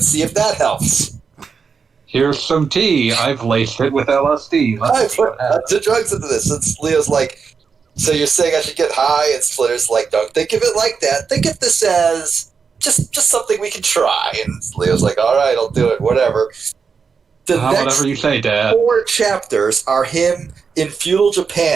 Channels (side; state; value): left; quieter; 5.7 dB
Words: see if that helps. Here's some tea. I've laced it with LSD. I put the drugs into this. And Leo's like, so you're saying I should get high? And Splinter's like, don't think of it like that. Think of this as just something we can try. And Leo's like, all right, I'll do it. Whatever. The next whatever you say, Dad. 4 chapters are him in feudal